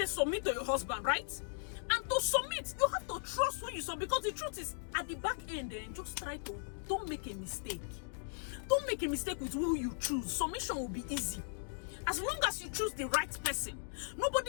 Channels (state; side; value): silent; right; digital silence